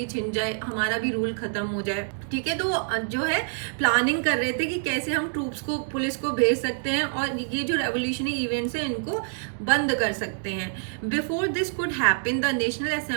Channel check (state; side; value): silent; left; 61 dB below the other